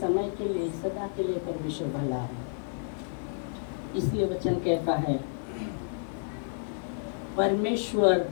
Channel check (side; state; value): right; silent; 56 dB below the other